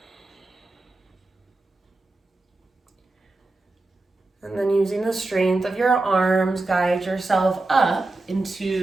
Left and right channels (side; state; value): left; quieter; 3.1 dB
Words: And then using the strength of your arms, guide yourself up